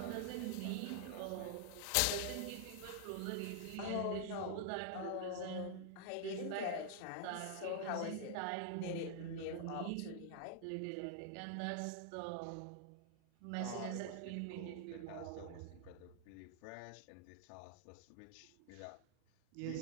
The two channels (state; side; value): different; both; correlation -0.01